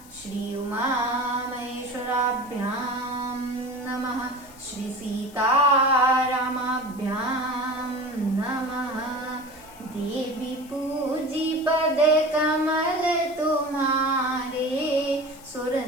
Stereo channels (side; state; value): left; noise; hiss, 22 dB below the sound